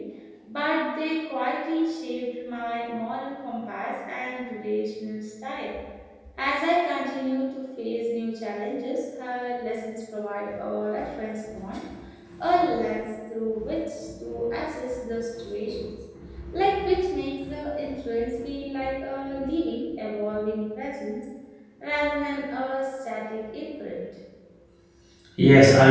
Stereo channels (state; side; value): identical; both; correlation 1.00